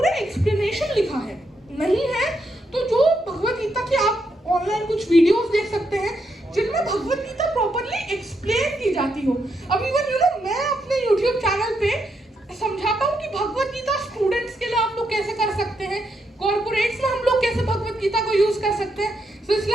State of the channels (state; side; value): normal; both; correlation 0.80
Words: एक्सप्लेनेशन लिखा है। नहीं है तो जो भगवत गीता की आप ऑनलाइन कुछ वीडियोस देख सकते हैं जिनमें भगवत गीता प्रॉपर्ली एक्सप्लेन की जाती हो। अब इवन मैं अपने YouTube चैनल पे